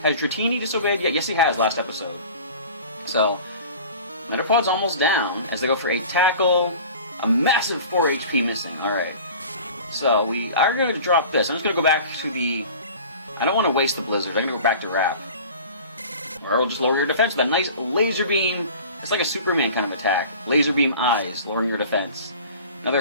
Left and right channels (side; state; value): both; inverted; correlation -0.42